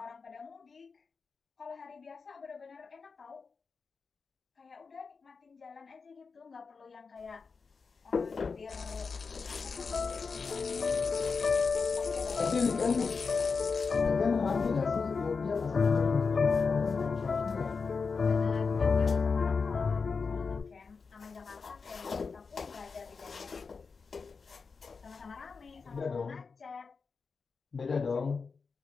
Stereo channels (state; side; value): quieter; right; 4.9 dB